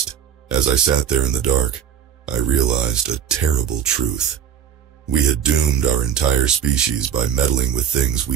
As I sat there in the dark, I realized a terrible truth. We had doomed our entire species by meddling with things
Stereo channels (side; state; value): left; quieter; 8.9 dB